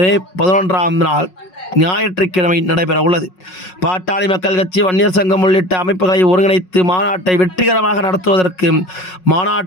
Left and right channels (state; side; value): late; right; 5.5 ms